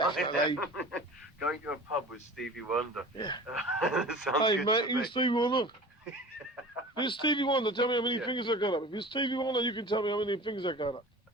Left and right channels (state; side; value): normal; both; correlation 0.39